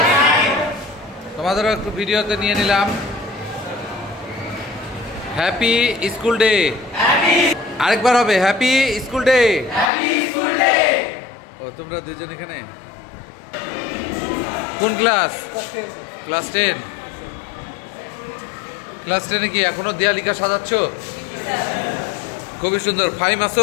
তোমাদেরও একটু ভিডিওতে নিয়ে নিলাম। হ্যাপি স্কুল ডে, আরেকবার হবে হ্যাপি স্কুল ডে। ও তোমরা দুজন এখানে কোন ক্লাস? ক্লাস 10। ক্লাস 10-এ কি এখনো দেয়ালিকা সাজাচ্ছ? খুবই সুন্দর। ফাইম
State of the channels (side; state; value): right; drops out; at 9.9 s